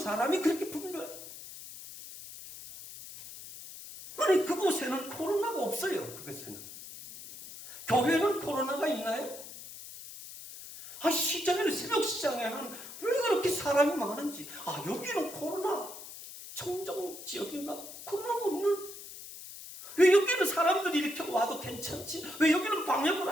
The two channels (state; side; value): noise; left; hiss, 13 dB below the sound